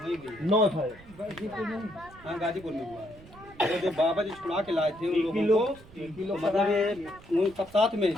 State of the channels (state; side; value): noise; right; rumble, 22 dB below the sound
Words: नौ था हाँ, गाजीपुर में हुआ। तो जो बाबा जी छुड़ा के लाए थे उन लोगों को, मतलब ये उन सब साथ में है,